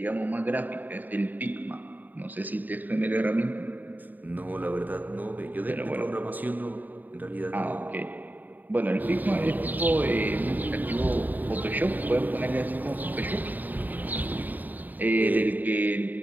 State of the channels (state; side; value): late; left; 0.086 ms